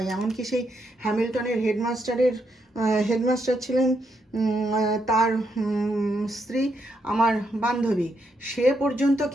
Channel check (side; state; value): both; normal; correlation 0.79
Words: এমনকি সেই হ্যামিল্টনের হেডমাস্টার ছিলেন, তার স্ত্রী আমার বান্ধবী, সে পর্যন্ত